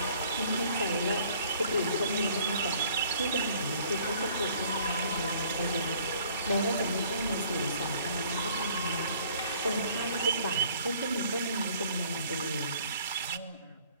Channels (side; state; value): both; inverted; correlation -0.57